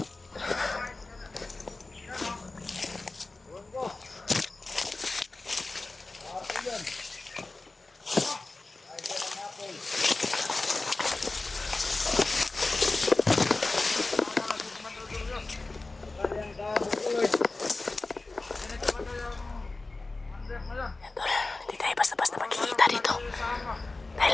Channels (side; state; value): right; quieter; 3.3 dB